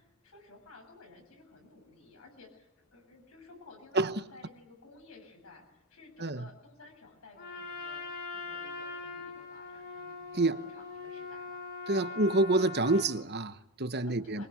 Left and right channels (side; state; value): both; normal; correlation 0.21